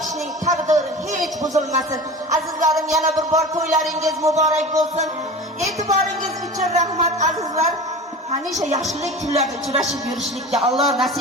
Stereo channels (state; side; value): normal; both; correlation 0.34